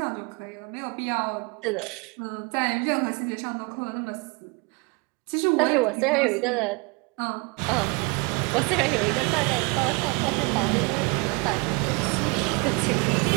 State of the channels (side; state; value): left; quieter; 30.0 dB